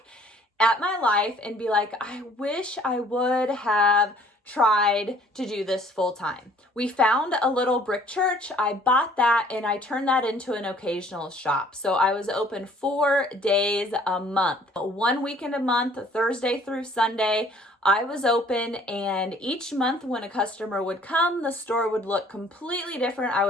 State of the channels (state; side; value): normal; both; correlation 0.56